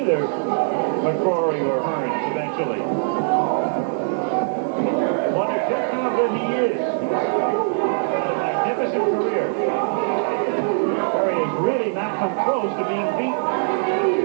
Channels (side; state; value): left; silent; digital silence